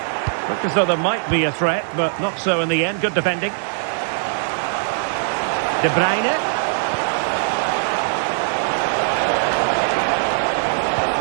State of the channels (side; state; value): left; silent; 61 dB below the other